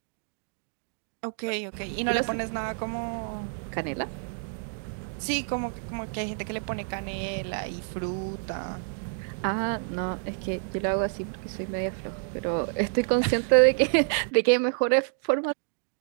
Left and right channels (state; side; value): silent; left; digital silence